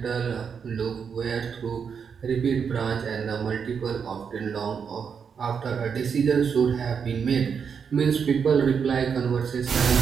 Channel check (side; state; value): left; quieter; 6.6 dB